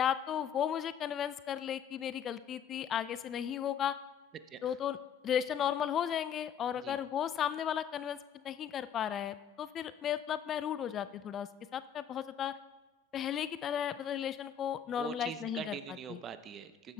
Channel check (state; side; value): quieter; right; 8.5 dB